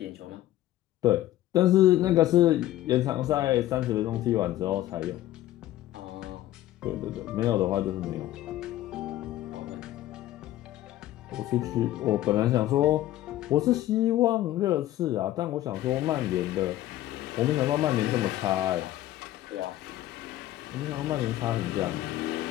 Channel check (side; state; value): right; quieter; 14.3 dB